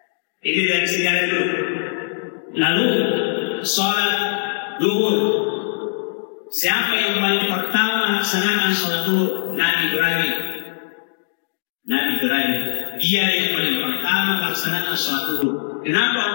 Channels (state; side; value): silent; right; digital silence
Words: itu dari sejarah dulu. Lalu sholat duhur. Siapa yang paling pertama laksanakan sholat duhur? Nabi Ibrahim. Dia yang paling pertama laksanakan sholat duhur.